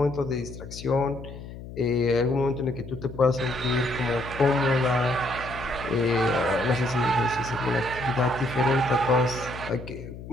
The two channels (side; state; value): left; noise; hum, 13 dB below the sound